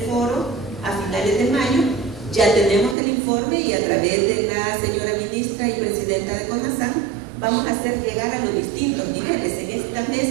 foro a finales de mayo. Ya tenemos el informe, y a través de la señora ministra y presidenta de CONASAN vamos a hacer llegar a los distintos niveles. En estas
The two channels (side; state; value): left; drops out; at 3.0 s